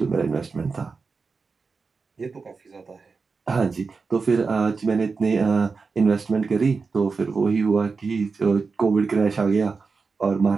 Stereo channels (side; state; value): left; quieter; 4.6 dB